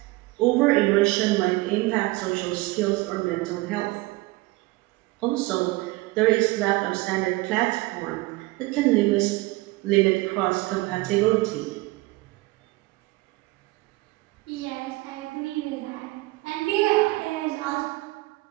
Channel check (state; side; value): quieter; left; 21.4 dB